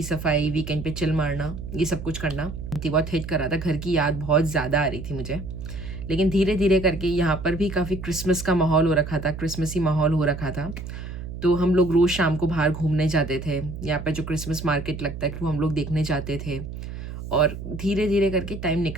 सफाई, वीकेंड पे चिल मारना, ये सब कुछ करना। बहुत हिट कर रहा था, घर की याद बहुत ज़्यादा आ रही थी मुझे। लेकिन धीरे धीरे करके यहाँ पर भी काफ़ी क्रिसमस का माहौल हो रखा था, क्रिसमसी माहौल हो रखा था। तो हम लोग रोज़ शाम को बाहर घूमने जाते थे, यहाँ पर जो क्रिसमस मार्केट लगता है वो हम लोग देखने जाते थे। और धीरे धीरे करके टाइम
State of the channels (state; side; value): noise; right; hum, 9 dB below the sound